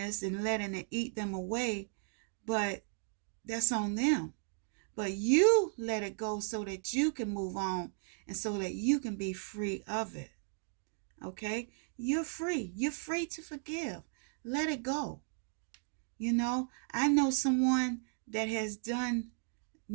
and letting it eat them away, but that's on them. But you let it go so that you can move on and so that you can be free of it. Okay? You're free. You're free to forgive. Let it go. You know, I know someone that has done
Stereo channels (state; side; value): silent; left; 54 dB below the other